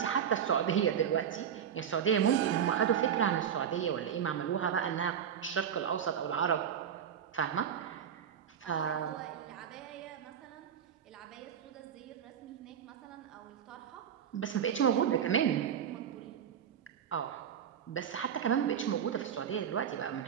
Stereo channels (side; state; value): left; quieter; 8.6 dB